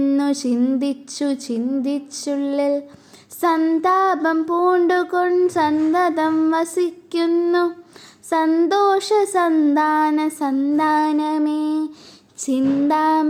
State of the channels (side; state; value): both; identical; correlation 1.00